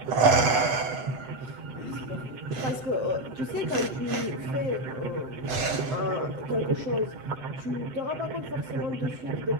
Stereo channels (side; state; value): left; late; 8.2 ms